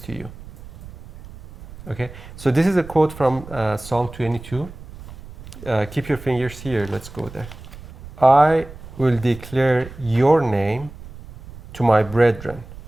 you. Okay, so this is a quote from Psalm 22. Keep your fingers here, let's go there. I will declare your name to my brethren.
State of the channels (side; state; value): right; noise; rumble, 16 dB below the sound